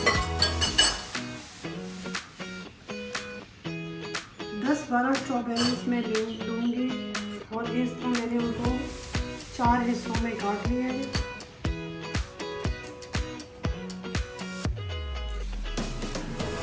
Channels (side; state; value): both; identical; correlation 1.00